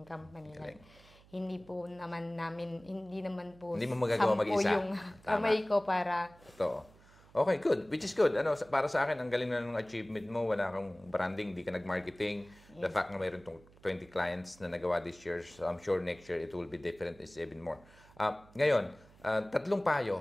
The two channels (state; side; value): noise; right; hum, 25 dB below the sound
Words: company. Like, hindi naman po hindi mo magagawa mag-isa. Yung kamay ko para... Totoo. Okay, good. Which is good. Para sa akin, ang galing na ng achievement mo. Wala kang branding, hindi ka nag-marketing. The fact na mayroon 20 clients na nagawa this year, so I'm sure next year it will be different, it's even more. Ngayon, 3